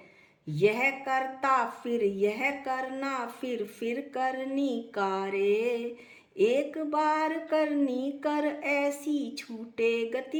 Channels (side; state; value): both; identical; correlation 1.00